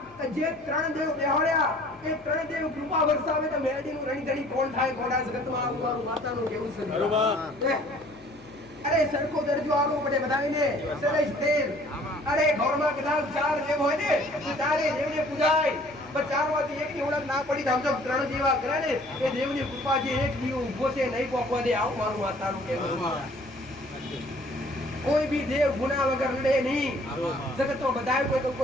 જે 3 દેવ બેહાડ્યા એ 3 દેવ કૃપા વરસાવે તો મેલડીનું રણીધણી કોણ થાય કોડા જગતમાં આવું મારું માતાનું કેવું છે બરોબર અરે સરખો દરજો આવો પડે બધાને સરેશ તેલ અરે ઘરમાં કદાચ 4 દેવ હોય ને તો 4 દેવને પૂજાય પણ 4 માંથી એકની ઓળખ ના પડી તો સમજો 3 દેવા કરે ને એ દેવની કૃપા જે એક દીવ ઉભો છે નહીં પહોંચવા દે આવું મારું માતાનું કેવું છે કોઈ ભી દેવ ગુના વગર નડે નહીં જગતમાં બધાય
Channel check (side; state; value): left; noise; hum, 27 dB below the sound